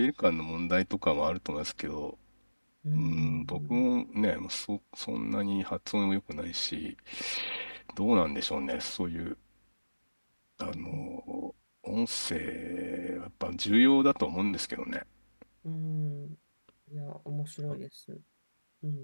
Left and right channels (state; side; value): inverted; both; correlation -1.00